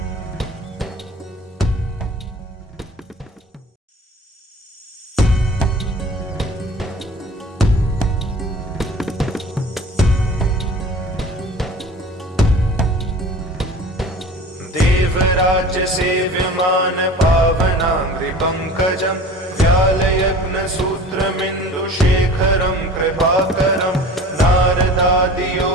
देवराज्यसेव्यमान पावनाङ्घ्रिपङ्कजं व्यालयग्नसूत्रमिन्दुशेखरं कृपाकरं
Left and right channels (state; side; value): normal; both; correlation 0.42